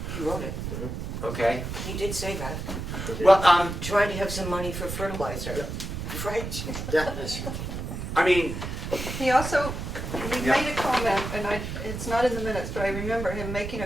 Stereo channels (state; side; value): noise; right; rumble, 5 dB below the sound